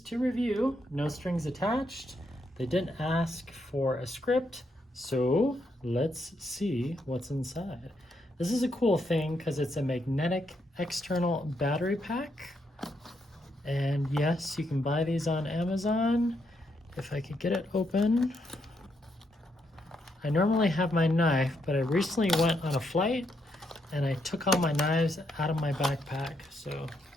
to review, no strings attached. They didn't ask for a script, so let's see what's inside. This is a cool thing because it's a magnetic external battery pack. And yes, you can buy these on Amazon. If I could get it open. I normally have my knife, but I recently went on a flight and I took all my knives out of my backpack, so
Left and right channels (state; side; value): normal; both; correlation 0.78